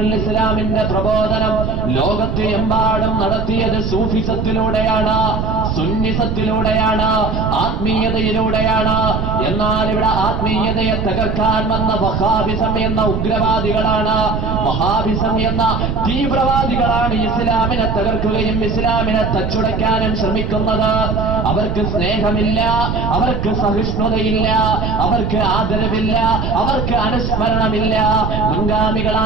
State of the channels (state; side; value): noise; right; rumble, 2 dB below the sound